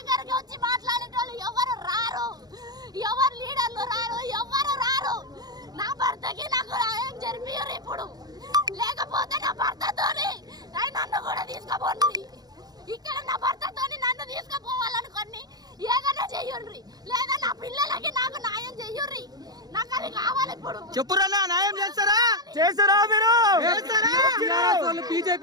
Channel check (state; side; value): late; left; 0.19 ms